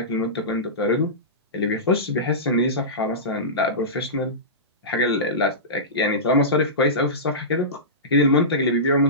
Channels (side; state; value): both; normal; correlation -0.19